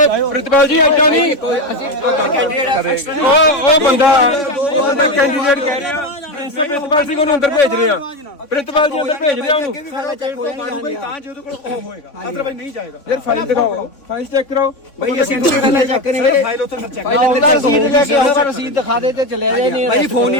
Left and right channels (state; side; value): late; right; 3.5 ms